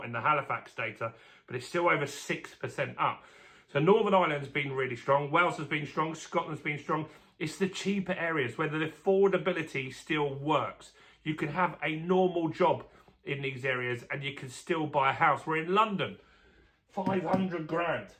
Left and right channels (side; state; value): both; identical; correlation 1.00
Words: in the Halifax data, but it's still over 6% up. So Northern Ireland's been really strong. Wales has been strong. Scotland's been strong. It's the cheaper areas where the affordability still works. You can have a normal job in these areas and you can still buy a house. We're in London, 500 grand,